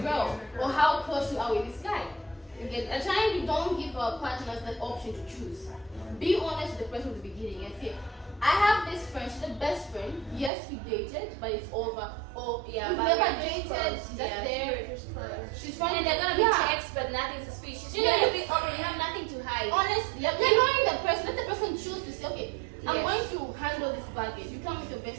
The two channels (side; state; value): left; drops out; at 10.5 s